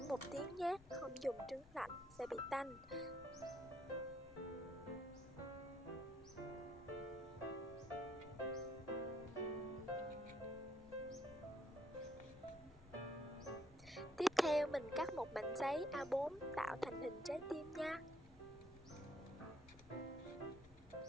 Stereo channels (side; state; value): left; noise; rumble, 19 dB below the sound